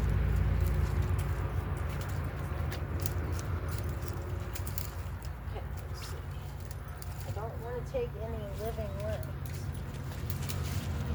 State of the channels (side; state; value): both; identical; correlation 1.00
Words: Okay, let's see. I don't want to take any living limbs.